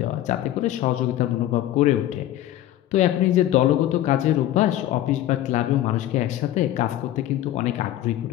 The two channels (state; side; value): quieter; right; 13.5 dB